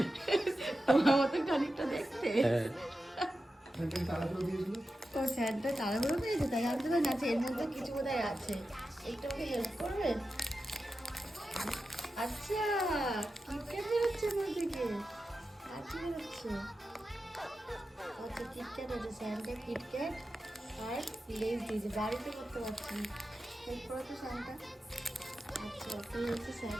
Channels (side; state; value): both; normal; correlation 0.92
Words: তোমার মতো খানিকটা দেখতে। হ্যাঁ তাড়াতাড়ি দিয়েছিল। তো স্যান্টা তাড়াহুড়ো পেয়েছে তাই আনতে পারে না। আচ্ছা, এর মধ্যে কিছু বোধহয় আছে, একটু আমাকে হেল্প করবে? আচ্ছা, কিটক্যাট বেরোচ্ছে আমার থেকে। আচ্ছা বেরোচ্ছে। আচ্ছা, কিটক্যাট আছে, স্যান্টা কিটক্যাট আর লেজ দিয়েছে। বাড়িতে করতে পারছি না, হেল্প করো তো স্যান্টা। আচ্ছা, তুই হচ্ছে